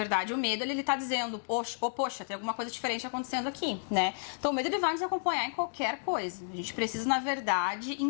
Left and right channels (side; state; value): right; silent; digital silence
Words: o medo, ele tá dizendo, poxa, tem alguma coisa diferente acontecendo aqui, né? Então, o medo, ele vai nos acompanhar em qualquer coisa. A gente precisa, na verdade,